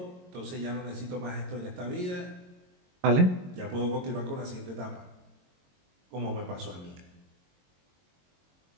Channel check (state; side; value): late; left; 22 ms